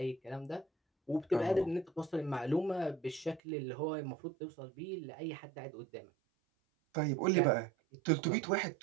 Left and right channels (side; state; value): left; drops out; at 3.4 s